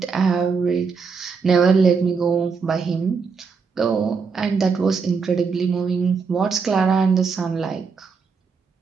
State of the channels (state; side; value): quieter; left; 5.3 dB